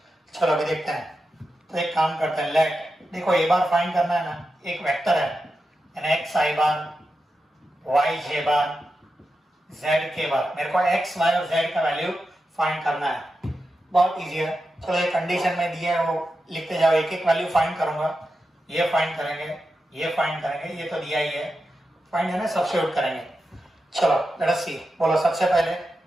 चलो अभी देखते हैं, तो एक काम करते हैं, लेट देखो ए बार फाइंड करना है ना, एक वेक्टर है यानी एक्स आई बार वाई जे बार जेड के बार, मेरे को एक्स वाई और जेड का वैल्यू फाइंड करना है, बहुत इजी है, चलो ये कंडीशन में दिया है वो लिखते जाओ, एक एक वैल्यू फाइंड करूंगा, ये फाइंड करेंगे, ये फाइंड करेंगे, ये तो दिया ही है, फाइंड है ना, सब्स्टिट्यूट करेंगे, चलो लेट अस सी, बोलो सबसे पहले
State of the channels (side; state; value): both; normal; correlation 0.89